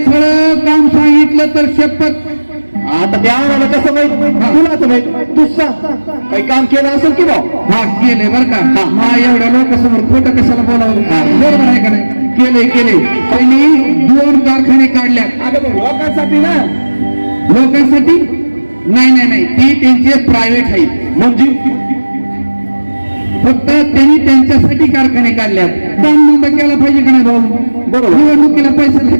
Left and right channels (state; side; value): inverted; both; correlation -1.00